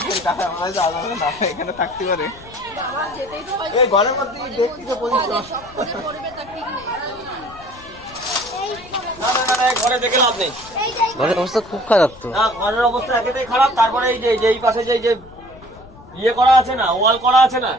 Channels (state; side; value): noise; left; rumble, 21 dB below the sound